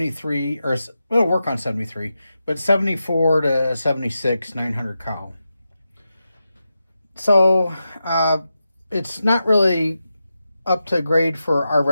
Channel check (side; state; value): both; inverted; correlation -0.90